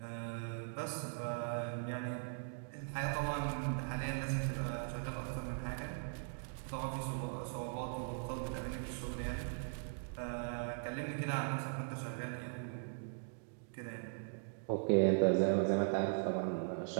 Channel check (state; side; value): silent; left; digital silence